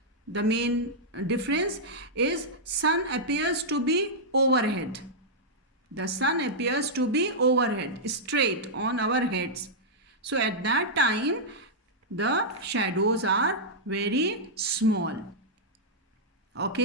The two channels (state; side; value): normal; both; correlation -0.08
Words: the main difference is sun appears to be overhead. The sun appears to be overhead, straight on our heads. So at that time, the shadows are very small.